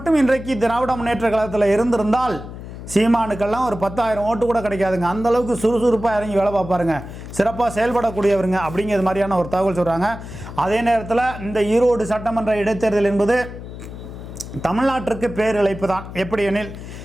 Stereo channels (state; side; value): noise; left; hum, 12 dB below the sound